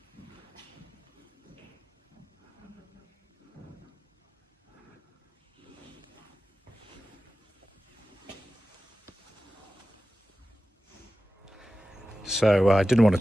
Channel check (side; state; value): both; normal; correlation 0.94